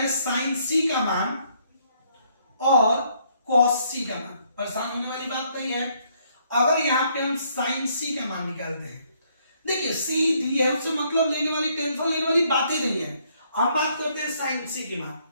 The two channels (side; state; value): both; inverted; correlation -0.68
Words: साइन C का मान और cos C का मान। परेशान होने वाली बात नहीं है। अगर यहाँ पे हम साइन C का मान निकालते हैं, देखिए C दी है, उससे मतलब लेने वाली, टेंशन लेने वाली बातें नहीं है। हम बात करते हैं साइन C की मान,